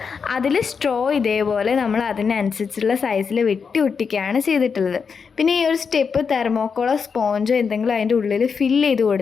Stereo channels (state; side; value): quieter; right; 5.8 dB